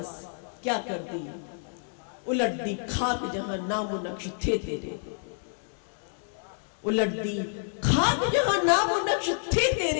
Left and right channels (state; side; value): silent; right; 59 dB below the other